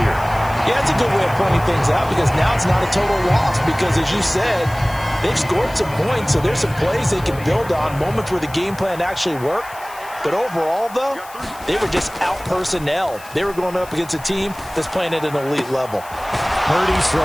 Yeah, it's a good way of pointing things out because now it's not a total loss because, as you said, they've scored some points, so there's some plays they can build on, moments where the game plan actually worked. But overall, though, they were just out-personnel. They were going up against a team that's playing at an elite level. Purdy's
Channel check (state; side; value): noise; left; hiss, 19 dB below the sound